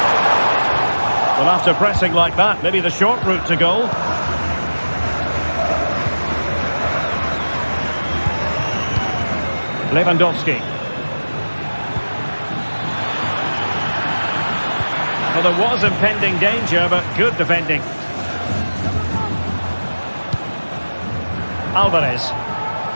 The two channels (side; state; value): both; inverted; correlation -1.00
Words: Well, after pressing like that, maybe the short route to goal. Lewandowski. Well, there was impending danger, but good defending. Alvarez.